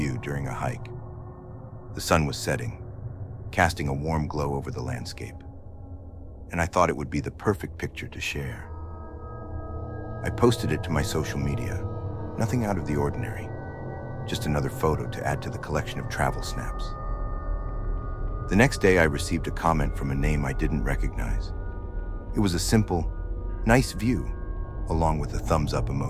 during a hike. The sun was setting, casting a warm glow over the landscape, and I thought it would be the perfect picture to share. I posted it to my social media, nothing out of the ordinary, just another photo to add to the collection of travel snaps. The next day, I received a comment from a name I didn't recognize. It was a simple, "Nice view," along with a thumbs up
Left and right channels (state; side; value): identical; both; correlation 1.00